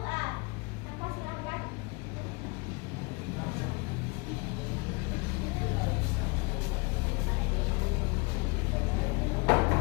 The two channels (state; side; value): quieter; right; 28.8 dB